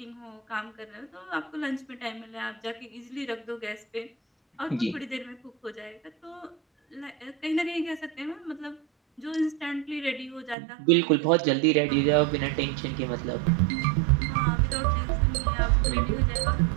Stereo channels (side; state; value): left; drops out; at 10.6 s